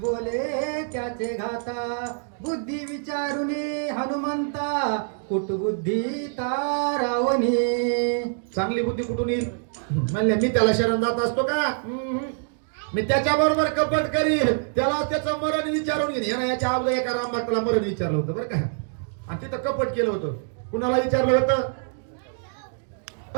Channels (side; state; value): left; silent; digital silence